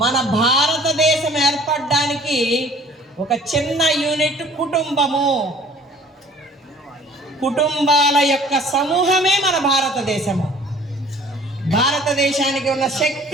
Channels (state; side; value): normal; both; correlation 0.51